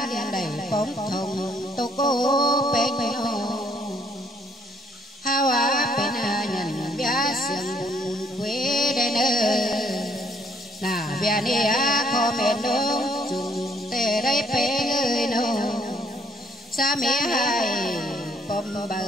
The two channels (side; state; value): both; normal; correlation 0.65